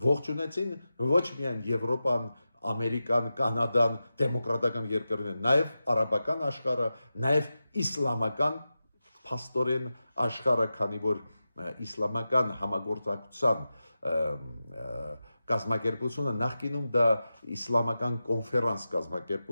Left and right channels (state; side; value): inverted; both; correlation -0.93